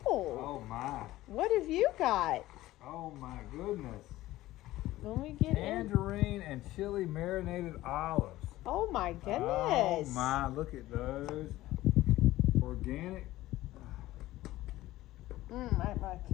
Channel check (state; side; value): quieter; right; 16.3 dB